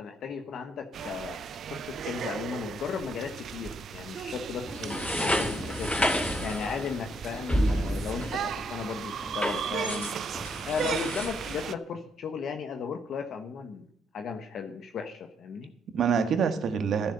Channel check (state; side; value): normal; both; correlation 0.72